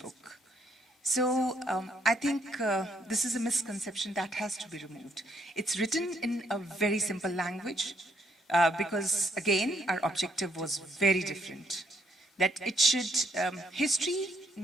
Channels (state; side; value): normal; both; correlation 0.71